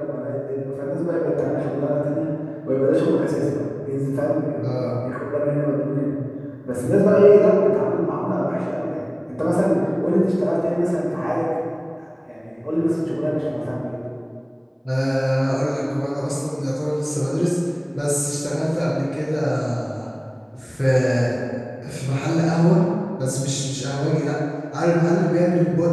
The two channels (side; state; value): both; identical; correlation 1.00